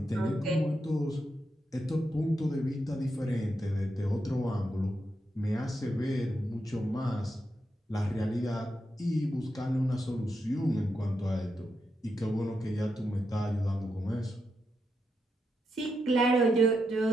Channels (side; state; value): both; normal; correlation 0.84